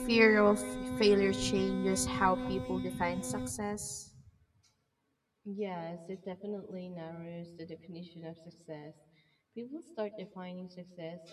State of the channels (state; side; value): identical; both; correlation 1.00